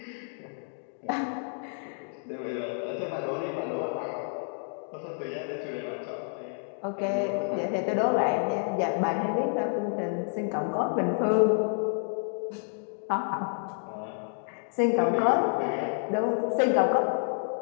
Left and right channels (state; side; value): silent; right; 58 dB below the other